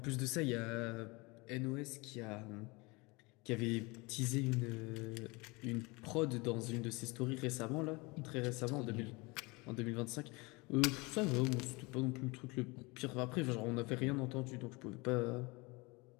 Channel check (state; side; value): quieter; right; 25.9 dB